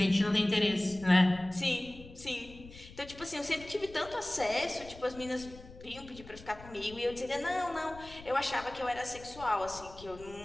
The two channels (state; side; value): noise; left; rumble, 18 dB below the sound